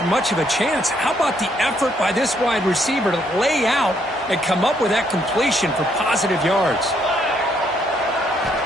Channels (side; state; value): both; normal; correlation 0.71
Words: much of a chance. How about the effort by this wide receiver to lay out and come up with that completion for positive yards?